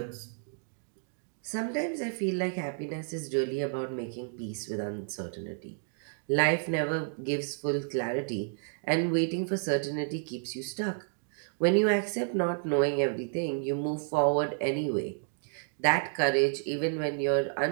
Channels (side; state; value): left; silent; 57 dB below the other